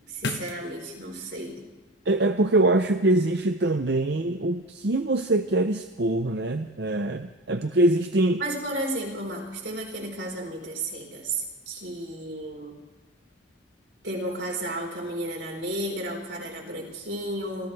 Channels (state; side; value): normal; both; correlation 0.30